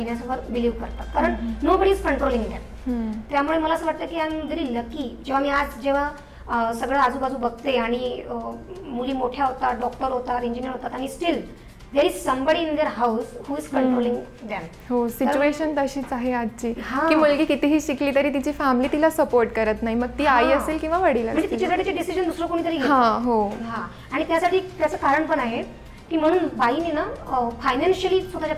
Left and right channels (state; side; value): identical; both; correlation 1.00